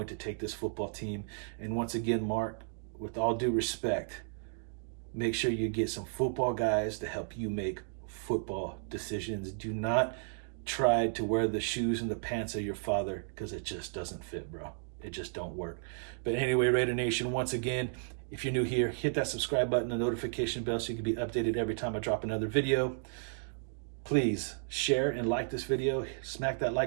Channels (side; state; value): left; silent; digital silence